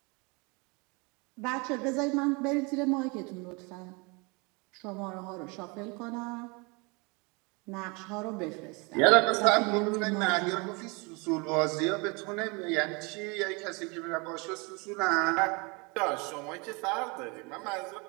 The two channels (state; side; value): quieter; left; 29.2 dB